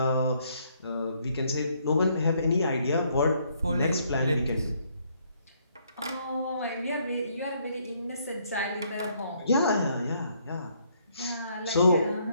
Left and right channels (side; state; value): both; inverted; correlation -0.69